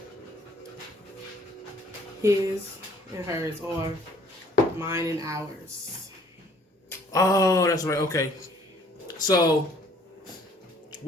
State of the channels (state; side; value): normal; both; correlation 0.58